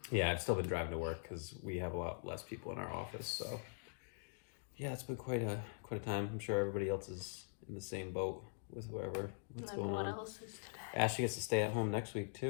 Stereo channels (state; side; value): silent; right; digital silence